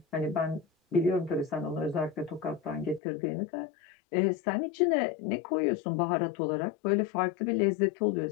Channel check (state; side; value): drops out; right; at 3.0 s